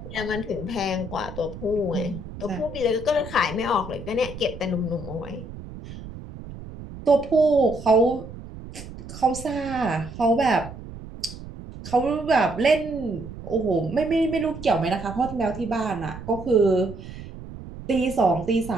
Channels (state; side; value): noise; right; rumble, 13 dB below the sound